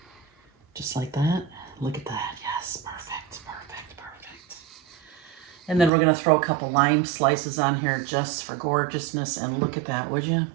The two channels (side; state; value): left; drops out; at 5.9 s